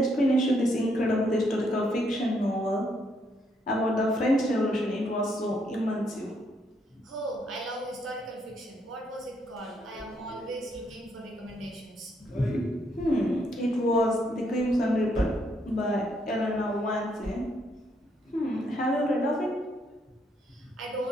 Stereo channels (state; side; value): normal; both; correlation 0.74